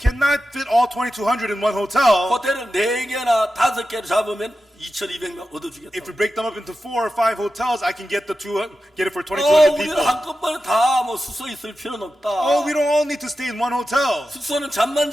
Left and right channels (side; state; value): both; normal; correlation 0.92